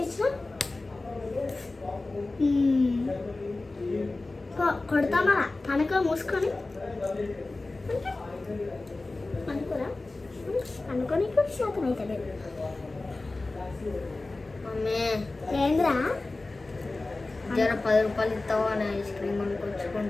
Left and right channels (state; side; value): quieter; right; 3.2 dB